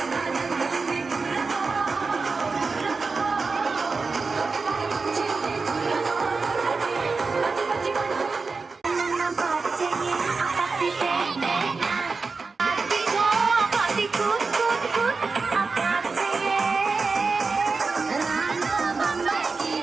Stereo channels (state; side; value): quieter; left; 4.3 dB